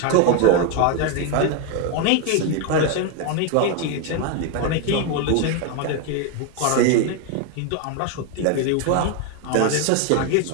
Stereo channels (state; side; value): different; both; correlation 0.01